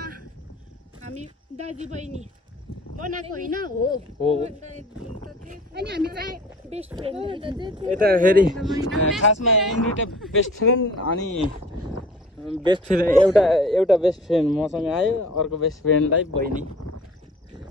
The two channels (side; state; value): both; normal; correlation 0.46